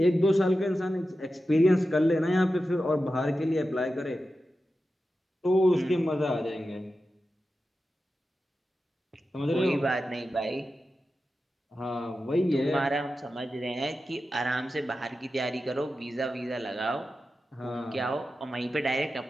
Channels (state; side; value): normal; both; correlation 0.92